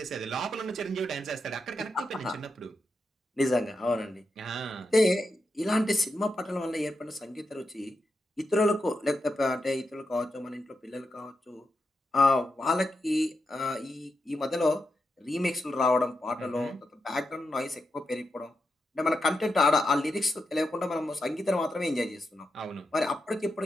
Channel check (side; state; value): both; normal; correlation 0.86